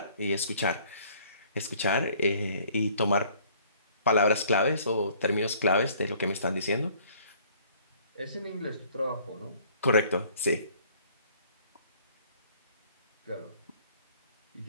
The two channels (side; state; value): both; inverted; correlation -0.57